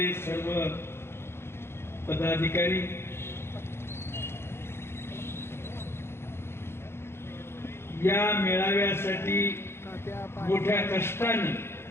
सर्व पदाधिकारी, या मेळाव्यासाठी मोठ्या कष्टाने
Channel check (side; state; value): right; late; 0.12 ms